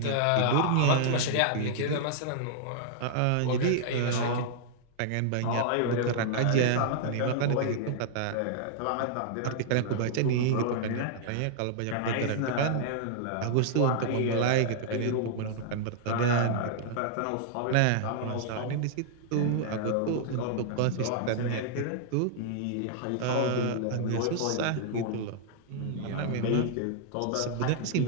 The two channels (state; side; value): different; both; correlation -0.01